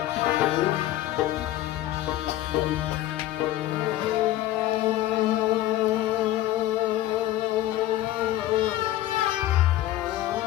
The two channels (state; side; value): quieter; right; 14.5 dB